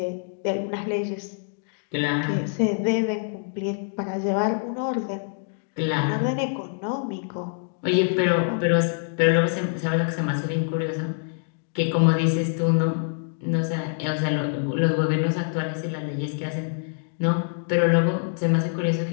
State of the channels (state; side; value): silent; right; digital silence